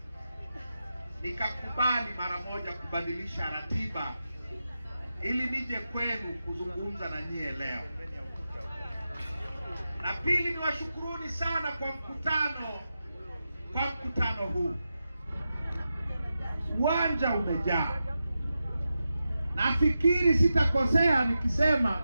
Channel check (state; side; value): inverted; both; correlation -0.90